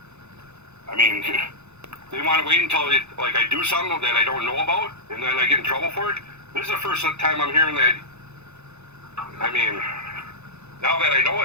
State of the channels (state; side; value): late; left; 0.81 ms